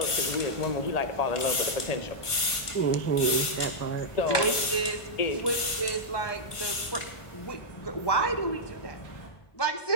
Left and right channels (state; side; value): late; right; 1.5 ms